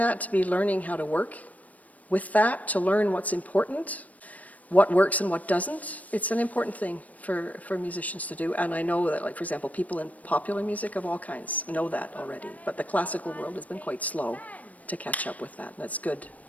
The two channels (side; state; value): right; late; 0.071 ms